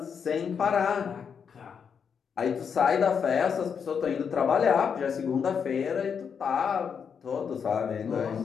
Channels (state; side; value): quieter; right; 6.8 dB